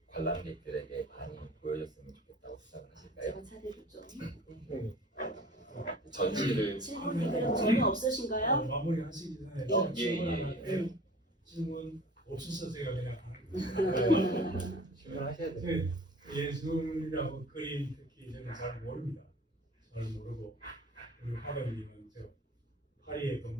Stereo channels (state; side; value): normal; both; correlation 0.44